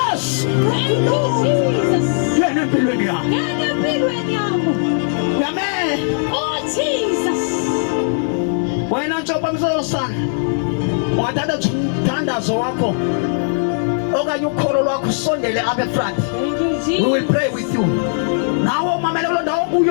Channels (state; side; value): silent; right; 67 dB below the other